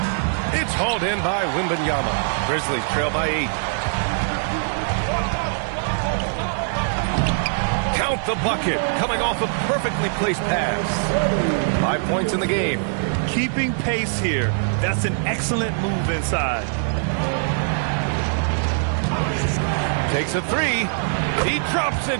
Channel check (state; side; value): silent; left; digital silence